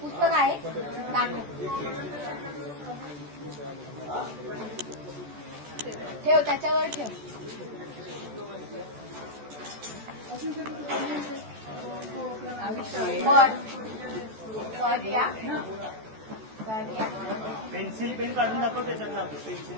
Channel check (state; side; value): late; left; 14 ms